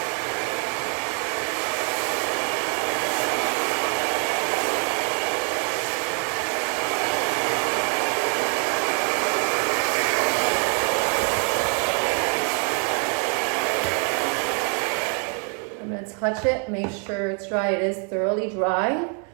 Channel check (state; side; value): quieter; left; 39.2 dB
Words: Touch it, make sure it's dry. It is thoroughly dry.